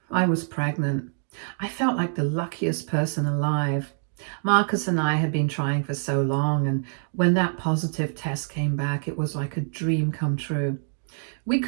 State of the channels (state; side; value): silent; left; digital silence